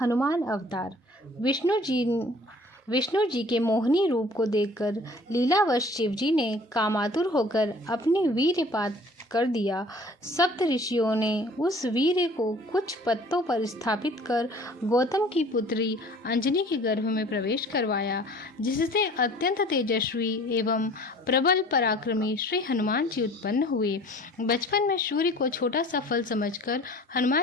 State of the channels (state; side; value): normal; both; correlation 0.49